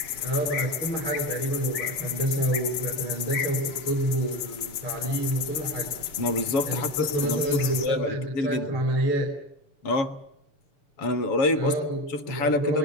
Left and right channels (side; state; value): right; late; 7.0 ms